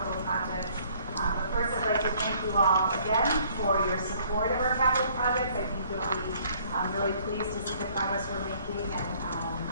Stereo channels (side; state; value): both; inverted; correlation -0.60